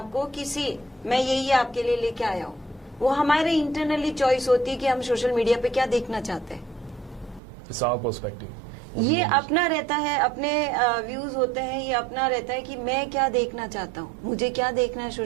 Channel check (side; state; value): left; drops out; at 7.4 s